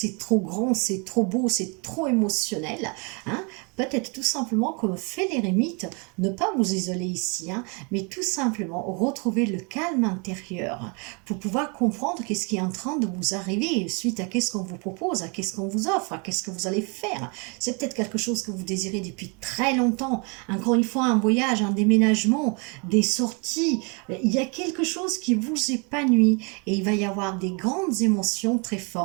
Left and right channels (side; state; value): left; quieter; 32.9 dB